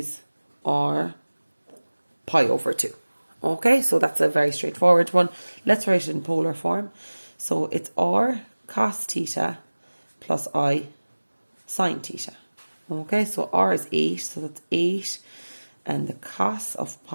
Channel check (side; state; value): both; inverted; correlation -1.00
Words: or pi over 2. Okay, so that's a very straightforward one. Let's write it in polar form. So it's r cos theta plus I sine theta. Okay, so r is 8, so that's 8, and the cos of